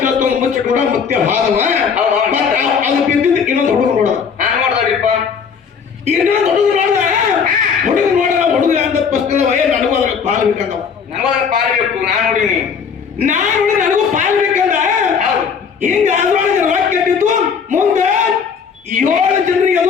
ಮುಚ್ಚಿಟ್ಕೊಂಡ ಮುತ್ಯ ಹಾದವ ಅದು ಬಿದ್ದಿದ್ದು ಇನ್ನೊಂದು ಹುಡುಗ ನೋಡೋದು ಇನ್ನೊಂದು ಹುಡುಗ ನೋಡದ ಹುಡುಗ ಅಂತ ಪುಸ್ತಕದ ನನಗೂ ಅದ್ರ ಪಾಲ್ ಬೇಕಂದವ ಪಾಲ್ಬೇಕು ನಾನು ನನಗೂ ಪಾಲ್ ಬೇಕಂದ ಹಿಂಗ ಅದ್ರೊಳಗೆ ರೊಕ್ಕ ಕೆಟ್ಟಿದ್ದು ಮುಂದೆ 7 ಜನರಿಗೆ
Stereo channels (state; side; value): quieter; right; 6.4 dB